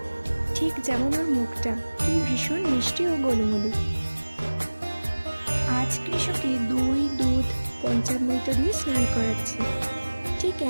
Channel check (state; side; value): inverted; both; correlation -1.00